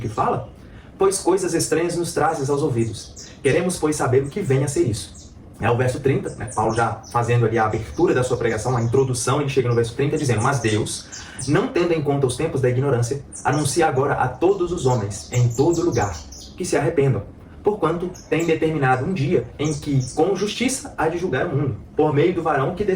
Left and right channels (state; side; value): identical; both; correlation 1.00